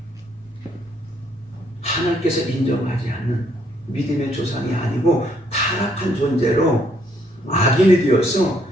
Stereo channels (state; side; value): normal; both; correlation 0.69